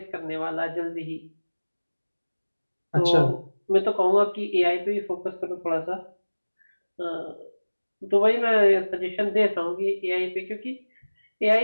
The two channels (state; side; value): inverted; both; correlation -1.00